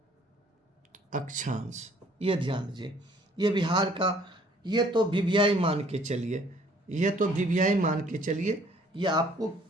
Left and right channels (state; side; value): normal; both; correlation 0.59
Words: अक्षांश। ये ध्यान दीजिए, ये बिहार का, ये तो वीवीआई मान के चलिए, ये तो वीवीआई मान के चलिए, ये आपको